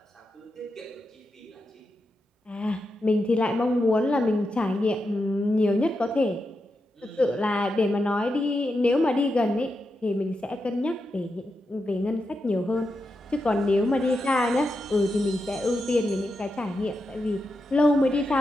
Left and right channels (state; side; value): normal; both; correlation 0.87